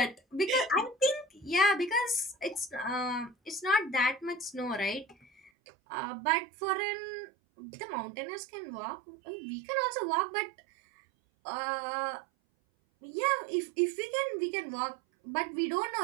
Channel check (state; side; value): drops out; left; at 5.5 s